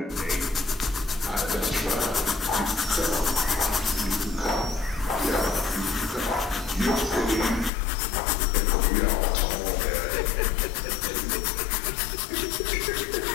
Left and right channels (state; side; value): drops out; right; at 7.7 s